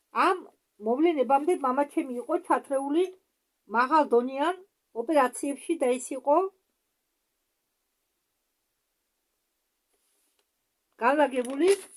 ამ მოვლენებამდე მამაჩემი იყო ჩათრეული მაღალდონიან ოპერაციებში და ის იყო განლაგებული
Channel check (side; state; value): both; identical; correlation 1.00